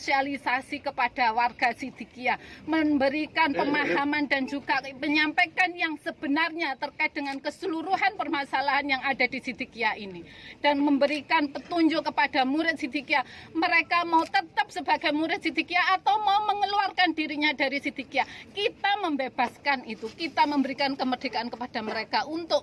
kepada warga Siddiqiyah, memberikan pemahaman dan juga menyampaikan yang sebenarnya terkait dengan keseluruhan permasalahan yang ada di Siddiqiyah ini, dan memberikan petunjuk kepada murid Siddiqiyah, mereka mau tetap sebagai murid Siddiqiyah atau mau mengeluarkan dirinya dari Siddiqiyah. Kita membebaskan itu, kita memberikan kemerdekaan kepada mereka untuk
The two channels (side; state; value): both; identical; correlation 1.00